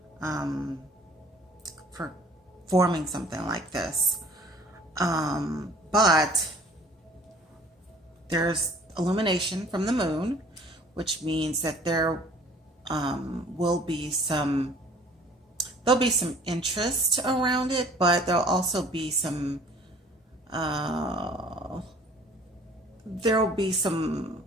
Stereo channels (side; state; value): both; normal; correlation 0.52